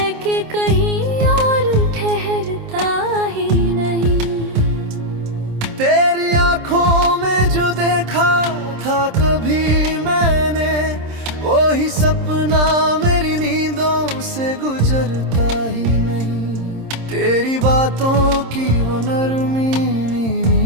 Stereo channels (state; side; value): late; left; 26 ms